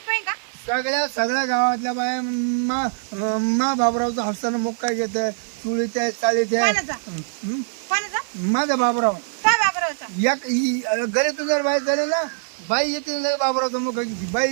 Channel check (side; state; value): left; silent; digital silence